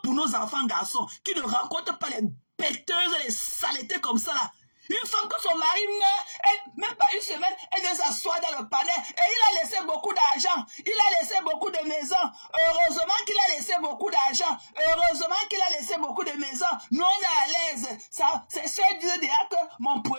pour nos enfants garçons qui ne rencontrent pas les bêteuses et les saletés comme ça là. Une femme que son mari meurt, même pas une semaine, elle vient s'asseoir dans le palais et il a laissé beaucoup d'argent. Il a laissé beaucoup de maisons. Heureusement qu'il a laissé beaucoup d'argent. Heureusement qu'il a laissé beaucoup de maisons. Nous, on est à l'aise. C'est sûr disait déjà que mon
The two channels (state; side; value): inverted; both; correlation -1.00